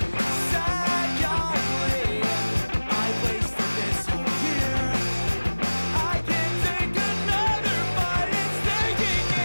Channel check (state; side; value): inverted; both; correlation -1.00